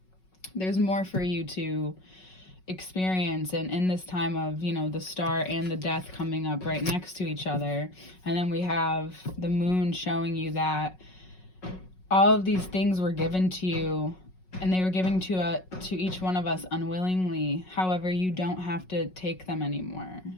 There's more for you to experience, and in this time of the star and the death coming up right next to each other, and then we have the moon showing you that all of these things were given to you, and they were given to each one of us unwillingly. However, you don't have to take them anymore,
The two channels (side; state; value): right; late; 5.4 ms